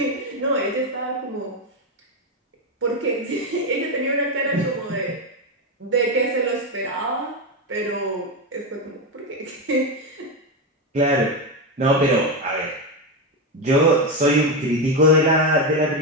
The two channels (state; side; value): normal; both; correlation 0.10